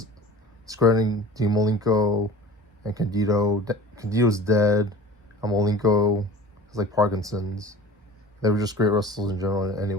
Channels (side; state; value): both; normal; correlation 0.39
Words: discrediting Dean Malenko and Candido. Candido's dead, and Malenko has like Parkinson's. They were just great wrestlers in general